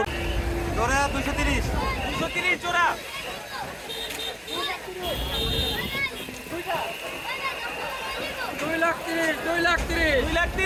জোড়া 230 জোড়া।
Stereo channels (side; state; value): both; identical; correlation 1.00